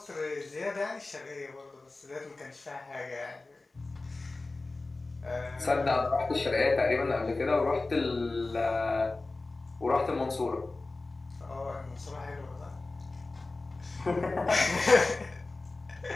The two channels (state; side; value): quieter; right; 3.3 dB